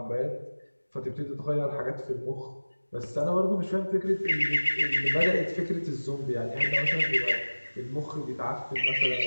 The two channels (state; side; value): inverted; both; correlation -1.00